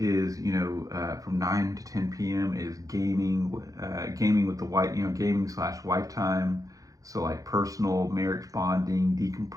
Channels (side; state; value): left; late; 0.17 ms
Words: from 9 to 10 p.m. is gaming with the wife, gaming / wife time. So like personal, marriage bonding,